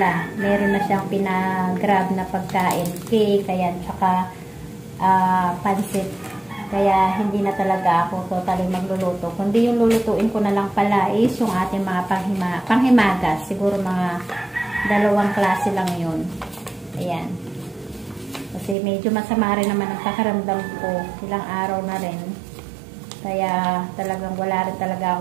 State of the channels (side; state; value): left; drops out; at 18.8 s